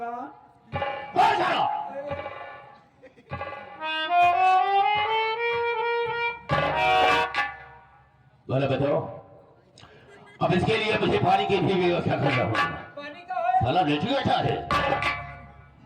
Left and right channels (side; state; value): both; identical; correlation 1.00